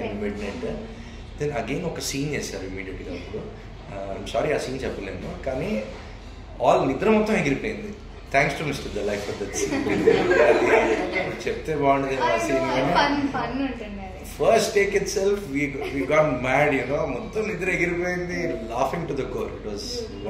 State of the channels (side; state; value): both; identical; correlation 1.00